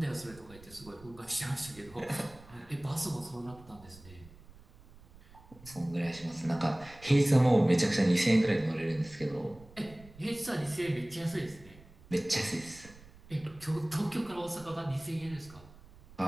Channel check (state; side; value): noise; right; rumble, 22 dB below the sound